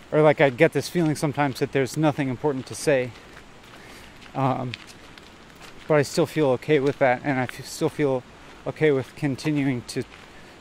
or like I get this feeling sometimes that there's nothing important to say, but I still feel okay with that, and I still feel okay with continuing to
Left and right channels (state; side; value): identical; both; correlation 1.00